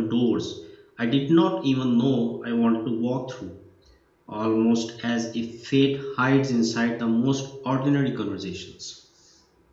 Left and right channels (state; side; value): identical; both; correlation 1.00